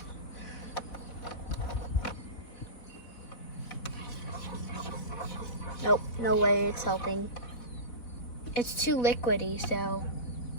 Nope, no way it's helping. It's too liquidy, so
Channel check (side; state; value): right; late; 4.1 ms